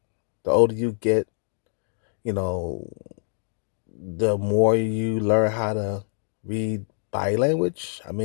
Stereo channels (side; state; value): right; silent; digital silence